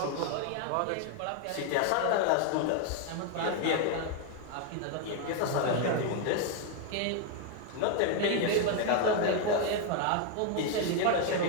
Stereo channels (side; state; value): both; different; correlation 0.01